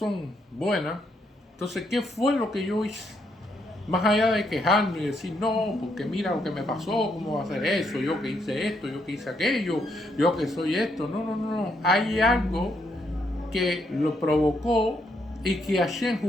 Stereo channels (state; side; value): normal; both; correlation 0.76